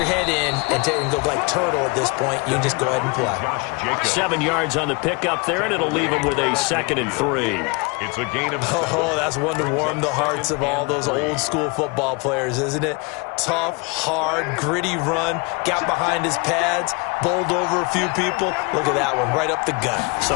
head in and go like turtle at this point. You just go ahead and play. 7 yards on the pickup there, and it'll leave him with a 2nd and 3. It's a gain of 7. Oh, that's one to warm the hearts of all those old-school football players, isn't it? Tough, hard, gritty run, got behind his pads, bowled over a few people. Look at that one, right up the gut.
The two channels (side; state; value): right; quieter; 28.5 dB